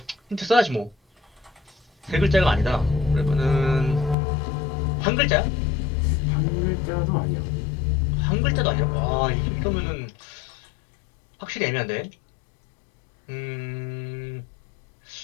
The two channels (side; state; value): right; drops out; at 4.2 s